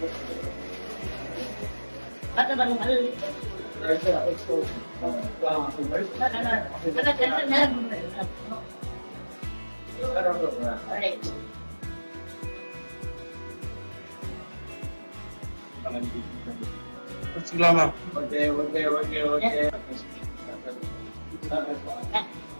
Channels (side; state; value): both; inverted; correlation -1.00